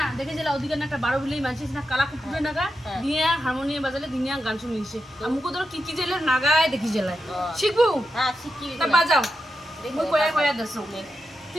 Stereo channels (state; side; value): normal; both; correlation 0.88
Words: হারমোনিয়াম বাজালে দিনিয়া গান শুনিছে আমুকো ধর কি কি জেলে নাগায় দেখি জেলায় শিখবো হ্যাঁ শিখি তা বাজাও মই কয়া কয়া দছো